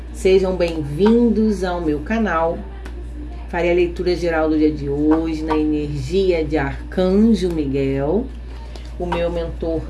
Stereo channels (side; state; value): both; identical; correlation 1.00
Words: Sejam bem-vindos ao meu canal. Farei a leitura geral do dia de hoje na energia de Arcanjo Miguel, o meu mentor